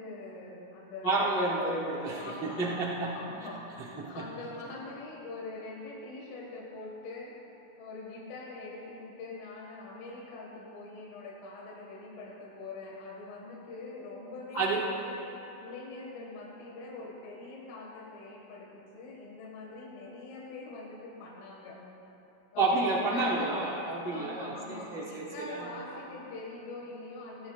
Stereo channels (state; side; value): late; right; 16 ms